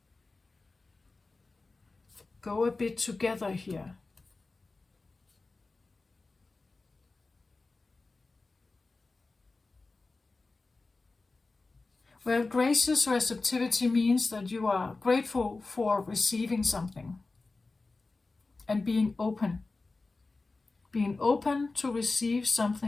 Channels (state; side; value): quieter; right; 3.6 dB